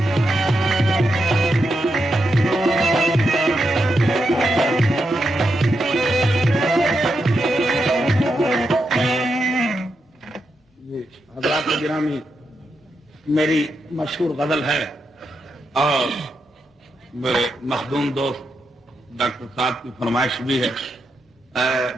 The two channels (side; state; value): both; normal; correlation 0.84